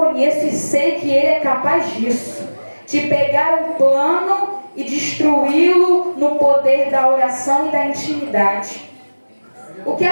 e sei que ele é capaz disso. De pegar um plano e destruí-lo no poder da oração e da intimidade. O que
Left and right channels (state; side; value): inverted; both; correlation -1.00